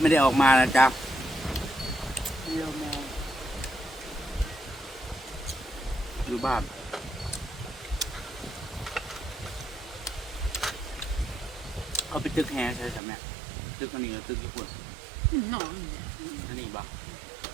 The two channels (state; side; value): drops out; left; at 13.0 s